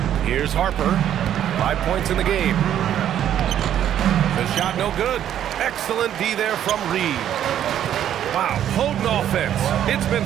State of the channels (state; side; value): quieter; left; 10.6 dB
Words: Here's Harper. 5 points in the game. The shot no good. Excellent D there from Reed. Wow, potent offense. It's been